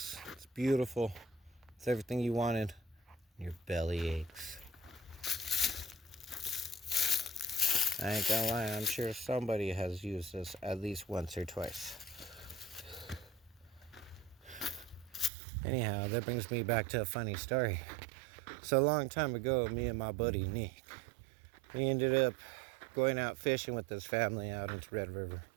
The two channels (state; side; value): drops out; left; at 15.3 s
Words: It's beautiful. It's everything you wanted. Your belly aches. I ain't gonna lie, I'm sure somebody has used this at least once or twice. Anyhow, that brings me back to a funny story. So a long time ago, me and my buddy Nick, we ended up going out fishing with his family out into Red River.